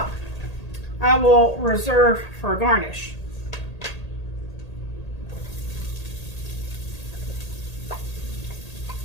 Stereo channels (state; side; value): late; right; 1.8 ms